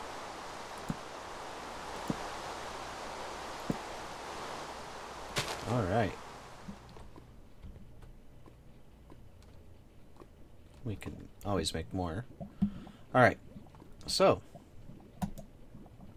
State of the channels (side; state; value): both; identical; correlation 1.00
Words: Alright. We can always make more. Alright. So.